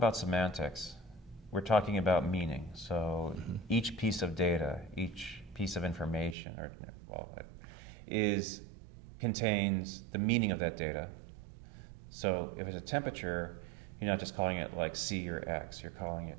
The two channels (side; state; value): left; drops out; at 6.4 s